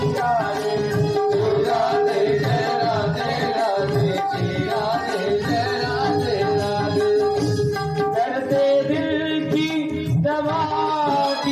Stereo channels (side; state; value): both; identical; correlation 1.00